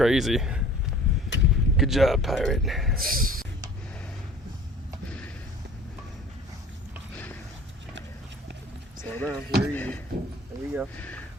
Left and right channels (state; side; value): normal; both; correlation 0.47